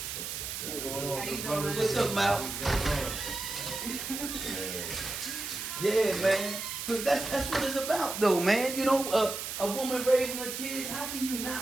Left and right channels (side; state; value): right; noise; hiss, 5 dB below the sound